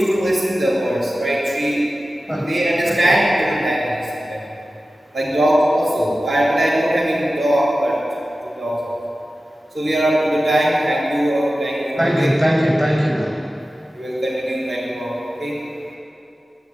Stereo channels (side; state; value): both; normal; correlation 0.94